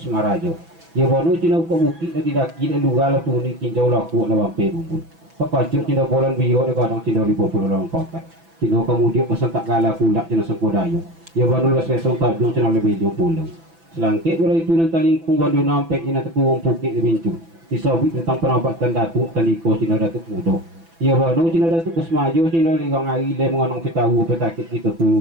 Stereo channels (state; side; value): late; left; 6.0 ms